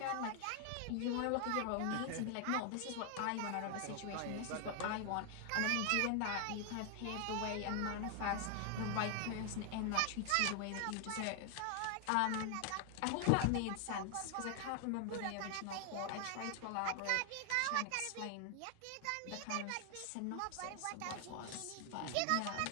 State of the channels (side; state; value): both; different; correlation 0.00